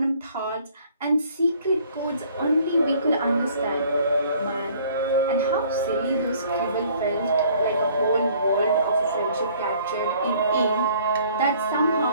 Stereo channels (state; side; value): inverted; both; correlation -0.57